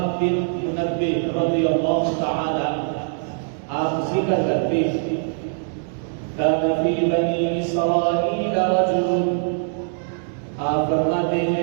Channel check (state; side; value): silent; left; digital silence